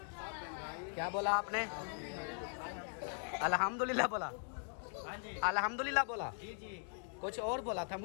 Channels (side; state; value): right; silent; 51 dB below the other